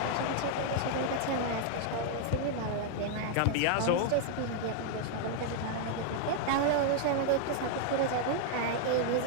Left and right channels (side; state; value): both; different; correlation 0.00